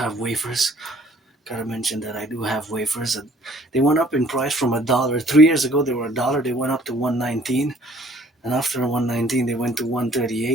wafers. Gotta mention that I do have wafers, and they went up in price from $1. 3 years ago, they were $1. They went up to $1.19, and after $1.19, they went to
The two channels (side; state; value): both; normal; correlation 0.57